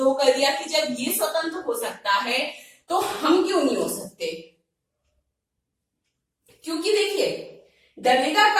कर दिया कि जब ये स्वतंत्र हो सकता है तो हम क्यों नहीं हो सकते। क्योंकि देखिए डरेगा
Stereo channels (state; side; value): identical; both; correlation 1.00